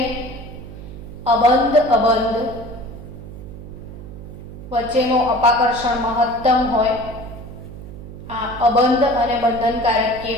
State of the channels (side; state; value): right; noise; hum, 13 dB below the sound